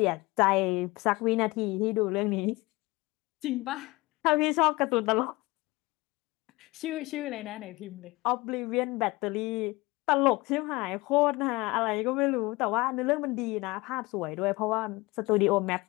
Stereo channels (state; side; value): quieter; right; 22.4 dB